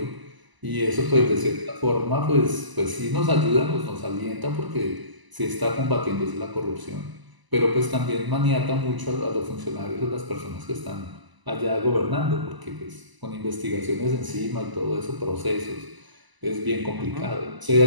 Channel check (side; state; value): left; late; 1.0 ms